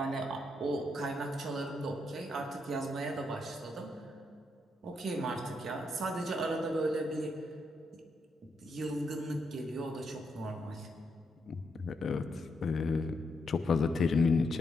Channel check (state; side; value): normal; both; correlation 0.80